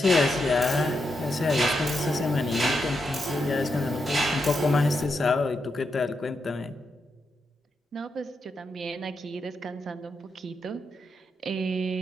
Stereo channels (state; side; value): normal; both; correlation 0.84